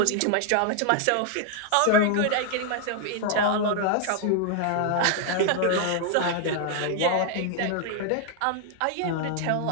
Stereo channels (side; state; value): both; different; correlation 0.00